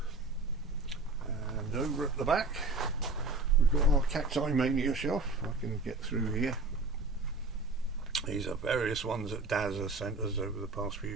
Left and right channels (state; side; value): quieter; left; 3.2 dB